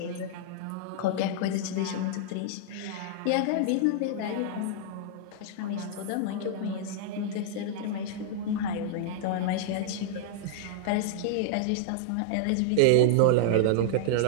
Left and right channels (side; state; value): both; different; correlation -0.01